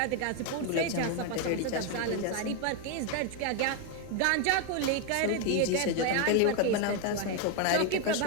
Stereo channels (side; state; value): both; different; correlation 0.01